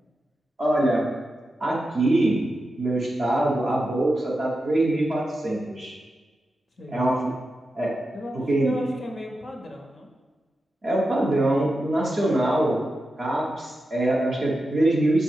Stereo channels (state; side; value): normal; both; correlation 0.90